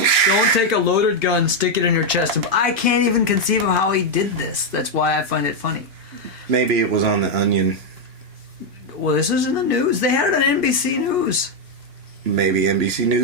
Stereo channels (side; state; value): left; late; 2.5 ms